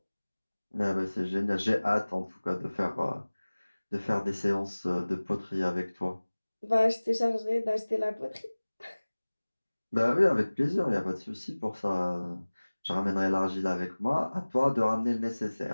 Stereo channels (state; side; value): inverted; both; correlation -1.00